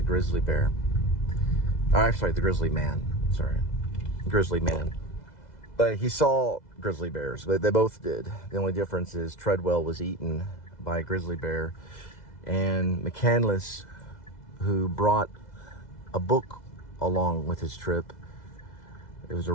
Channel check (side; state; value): right; late; 2.0 ms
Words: Grizzly Bear. The Grizzly Man. Grizzly Man. But he saw grizzly bears. They both did. The only difference is Treadwell was eaten by a grizzly bear, and McCandless, who brought a book along with his trip, it was a